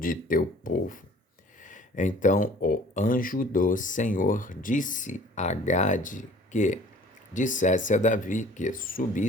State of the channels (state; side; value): normal; both; correlation 0.51